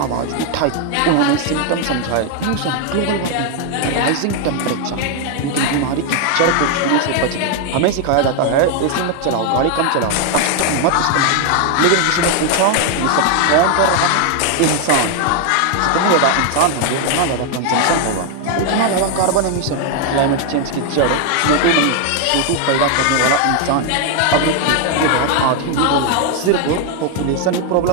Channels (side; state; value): both; different; correlation 0.00